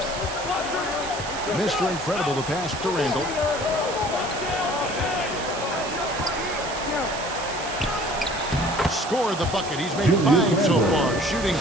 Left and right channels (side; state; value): right; noise; hiss, 10 dB below the sound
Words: Mr. Incredible, the pass to Randall. Scored the bucket. He's made 5 so far, shooting